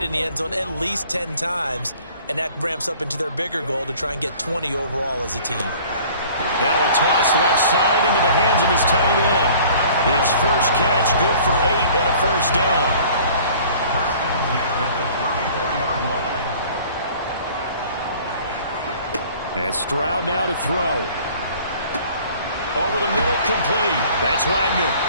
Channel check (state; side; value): inverted; both; correlation -0.50